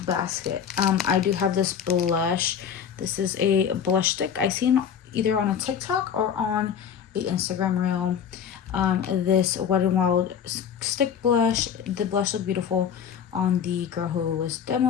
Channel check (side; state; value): right; quieter; 8.0 dB